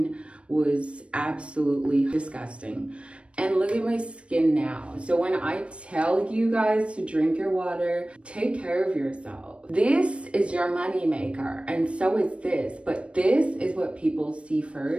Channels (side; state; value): left; late; 0.060 ms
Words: was absolutely disgusting. And look at my skin now. So when I tell you guys to drink your water, take care of yourself. This is your money maker, and so is this. But this is what people see